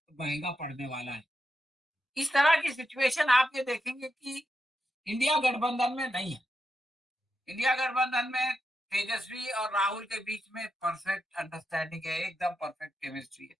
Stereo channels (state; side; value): normal; both; correlation 0.86